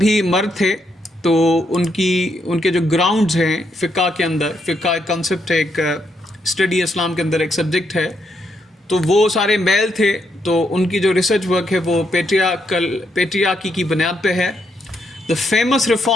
मर्द थे, तो उनके जो ग्राउंड्स हैं फ़िक़्ह के अंदर, फ़िक़्ह एक कॉन्सेप्ट है, एक स्टडी इस्लाम के अंदर एक सब्जेक्ट है, तो वो सारे मेल थे. तो उनकी जो रिसर्च वर्क है वो पेट्रियार्की की बुनियाद पे है. The famous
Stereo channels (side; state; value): both; normal; correlation 0.78